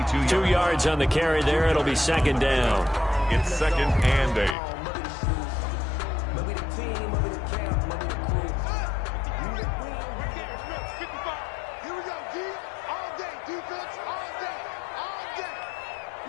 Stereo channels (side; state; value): right; drops out; at 4.5 s